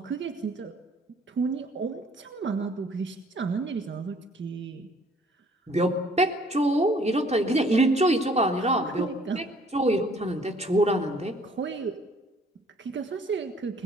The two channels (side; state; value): both; normal; correlation 0.58